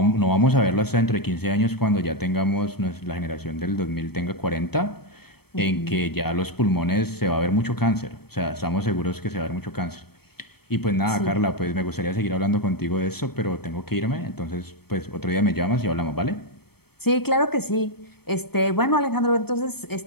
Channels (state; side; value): late; right; 0.96 ms